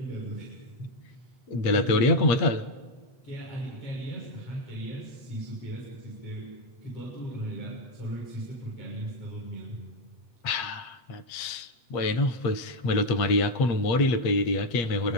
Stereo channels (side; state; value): right; late; 8.5 ms